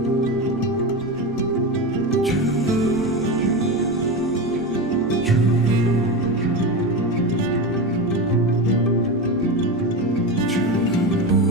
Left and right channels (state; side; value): normal; both; correlation 0.20